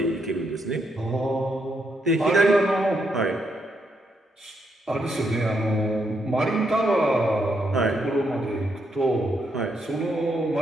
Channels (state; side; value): normal; both; correlation 0.78